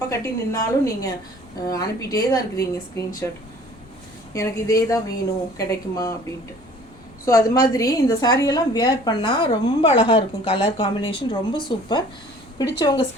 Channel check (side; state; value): both; normal; correlation 0.51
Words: கட்டி நின்னாலும் நீங்கள் அனுப்பிட்டே தான் இருக்கிறீங்க ஸ்க்ரீன்ஷாட், எனக்கு இதே தான் வேணும் கிடைக்குமா அப்படின்ட்டு. ஸோ அது மாதிரி இந்த சாரியெல்லாம் வேர் பண்ணால் ரொம்ப அழகாக இருக்கும். கலர் காம்பினேஷன் ரொம்ப சூப்பர். பிடிச்சவங்க